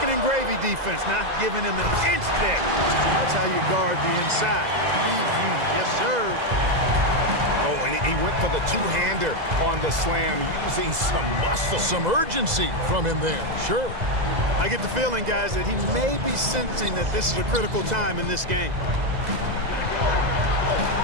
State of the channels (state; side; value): late; left; 2.0 ms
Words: and gravy defense, not giving him an inch there. That's how you guard the inside. Yes, sir. Oh, and he went for the two-hander on the slam, using some muscle. Some urgency from him there, sure. I get the feeling, guys, that he may be sensing that this is a critical time in this game.